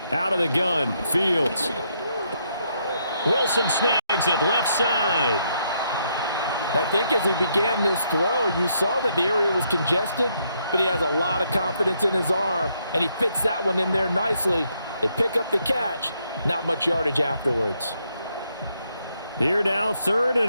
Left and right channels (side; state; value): both; inverted; correlation -0.75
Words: Out of the gun, Fields. Wilson snags it left side. I think as he began this throw, you saw that the area was congested, but he has a lot of confidence in his arm, and he fits that one in there nicely. They pick up the catch, not much yardage afterwards. Here now, 3rd